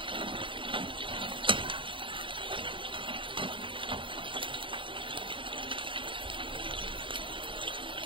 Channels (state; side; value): late; left; 0.25 ms